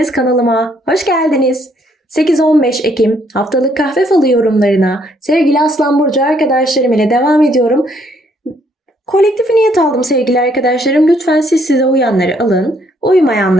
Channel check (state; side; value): normal; both; correlation 0.68